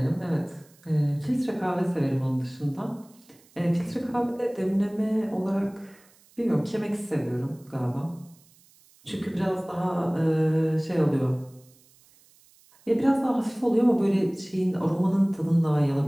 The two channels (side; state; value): right; noise; hiss, 29 dB below the sound